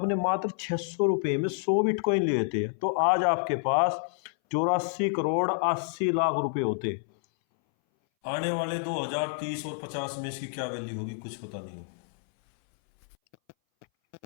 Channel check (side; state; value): right; silent; 59 dB below the other